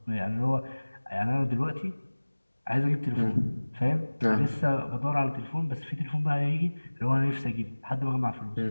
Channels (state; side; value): inverted; both; correlation -1.00